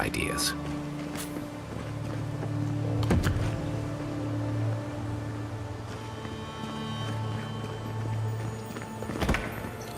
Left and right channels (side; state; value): both; identical; correlation 1.00